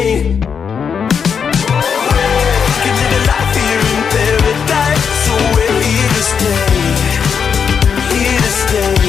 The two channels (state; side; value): quieter; right; 6.7 dB